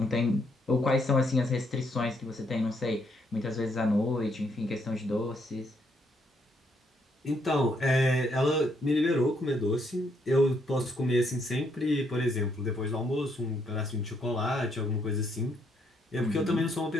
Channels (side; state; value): both; normal; correlation 0.73